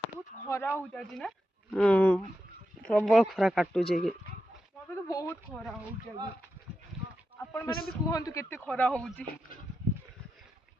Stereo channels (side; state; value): both; normal; correlation 0.88